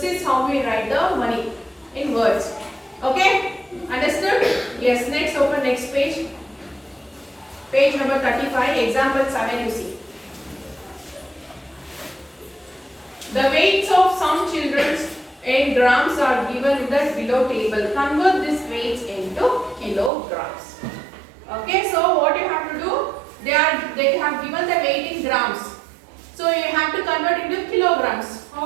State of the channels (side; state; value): left; drops out; at 20.1 s